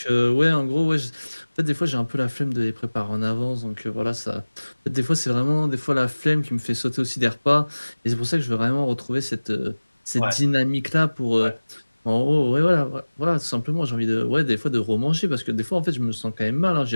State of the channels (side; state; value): both; inverted; correlation -1.00